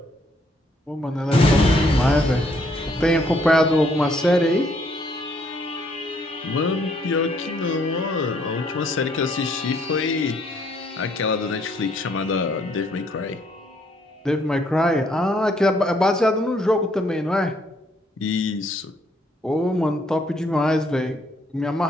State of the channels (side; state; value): both; normal; correlation 0.68